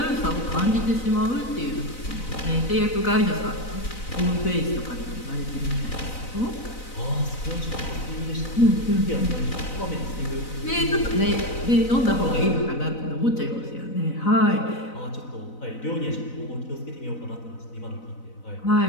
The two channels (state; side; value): late; right; 4.0 ms